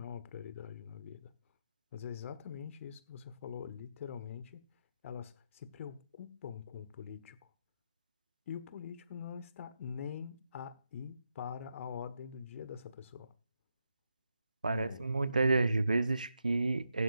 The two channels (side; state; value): both; inverted; correlation -0.84